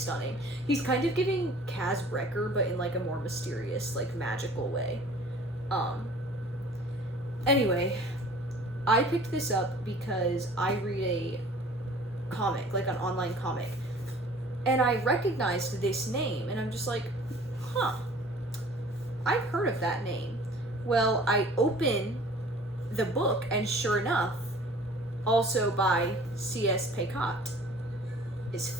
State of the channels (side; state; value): both; normal; correlation 0.48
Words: He's kind of giving Kaz Brekker, but in, like, a more mysterious, like, magical way. Anyway, I picked this up because I read a comic, like an online comic, and I recognized this name, and I'm just like, huh, I've heard of that name. Well, I open the book, and sure enough, also by C.S. Pacat, is